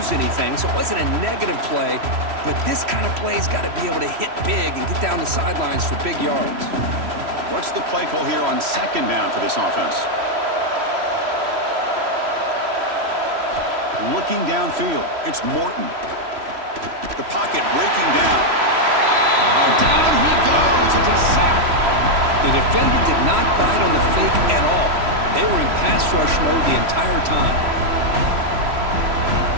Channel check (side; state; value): left; late; 3.0 ms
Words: anything, so it wasn't a negative play. But this kind of play's got to be able to hit big and get down the sidelines for big yards. What's the play call here on 2nd down for this offense? Looking downfield, it's Morton. The pocket breaking down. Oh, down he goes. It's a sack. The defender did not bite on the fake at all. They were in pass rush mode the entire time.